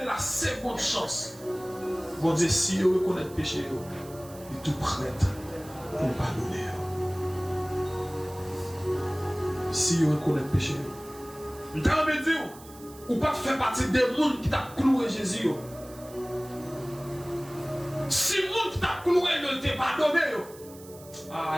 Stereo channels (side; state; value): right; noise; hiss, 20 dB below the sound